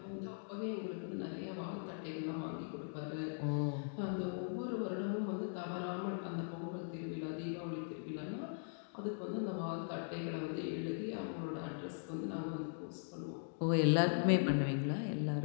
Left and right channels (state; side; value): silent; right; digital silence